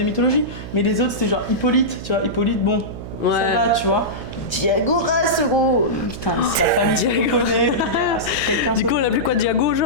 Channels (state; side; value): noise; right; hum, 11 dB below the sound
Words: mythologie. Mais les autres, c'était genre Hippolyte, tu vois. Hippolyte, bon, Ouais. ça va, tu vois. Diagoras, gros. Putain, c'est la famille qui Diago. connaît. Quelqu'un Du coup, on l'appelait quoi, Diago,